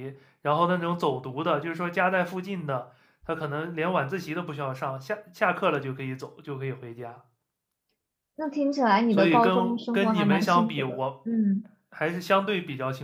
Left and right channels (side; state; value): both; identical; correlation 1.00